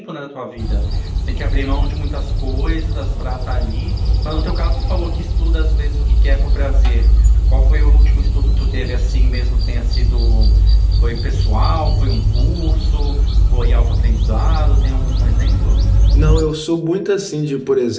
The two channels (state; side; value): identical; both; correlation 1.00